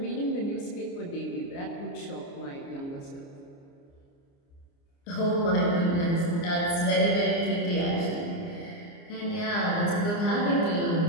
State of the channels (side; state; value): right; late; 29 ms